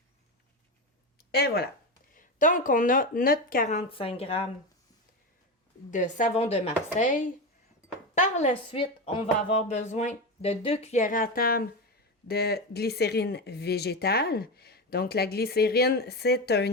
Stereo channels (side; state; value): both; normal; correlation 0.18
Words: Et voilà. Donc, on a notre 45 grammes de savon de Marseille. Par la suite, on va avoir besoin de 2 cuillères à table de glycérine végétale. Donc, la glycérine, c'est